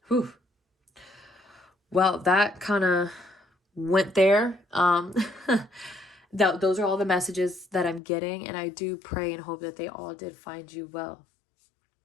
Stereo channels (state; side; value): drops out; right; at 8.0 s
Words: Whew. Well, that kind of went there. Those are all the messages that I'm getting, and I do pray and hope that they all did find you well.